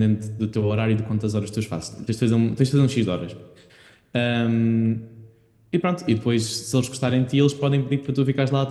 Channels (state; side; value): identical; both; correlation 1.00